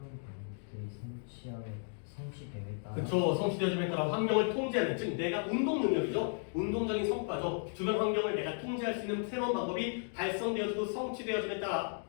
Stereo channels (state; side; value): silent; right; 55 dB below the other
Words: 방법들이 성취됨에 따라 그쵸. 성취되어짐에 따라 환경을 통제하는, 즉 내가 운동 능력이죠. 운동적인 성과죠. 주변 환경을 내가 통제할 수 있는 새로운 방법이 달성되어지고 성취되어짐에 따라